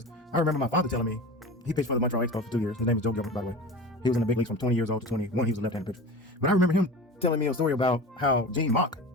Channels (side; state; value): both; normal; correlation 0.33